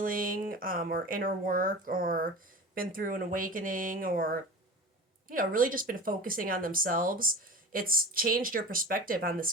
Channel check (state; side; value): normal; both; correlation 0.34